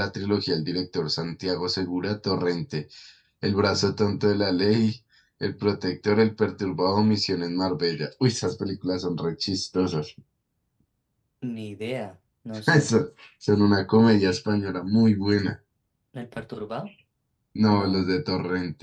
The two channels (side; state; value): both; identical; correlation 1.00